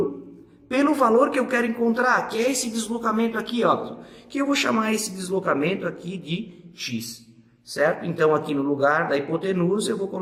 pelo valor que eu quero encontrar, que é esse deslocamento aqui, ó. Que eu vou chamar esse deslocamento aqui de x. Certo? Então, aqui no lugar da hipotenusa, eu vou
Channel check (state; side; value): identical; both; correlation 1.00